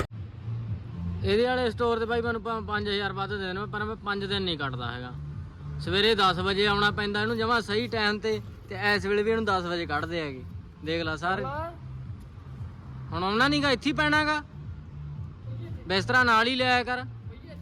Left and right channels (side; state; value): both; identical; correlation 1.00